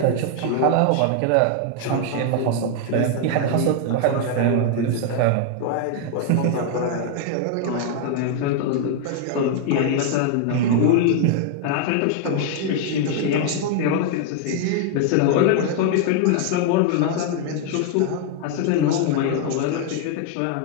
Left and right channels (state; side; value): different; both; correlation 0.00